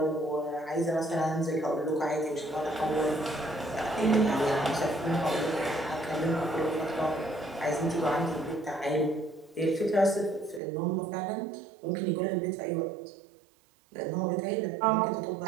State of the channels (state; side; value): drops out; left; at 10.6 s